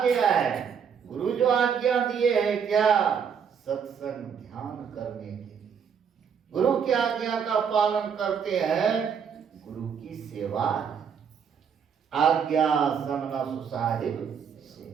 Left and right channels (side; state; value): left; quieter; 7.2 dB